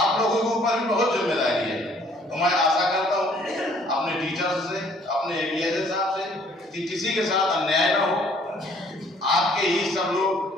लोगों के ऊपर भी बहुत जिम्मेदारी है। तो मैं आशा करता हूँ अपने टीचर्स से, अपने एबीएसए साहब से कि किसी के साथ अन्याय ना हो। आपके ही सब लोग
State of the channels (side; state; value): both; normal; correlation 0.60